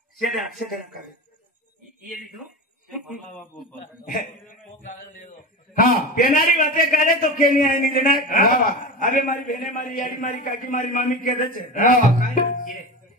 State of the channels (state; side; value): normal; both; correlation 0.27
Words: शेदा कागद ये लिखो हाँ पेनारी बातें करे तो केनी आई नहीं लेना अबे मारी बहने मारी यारी मारी काकी मारी मामी कहते छे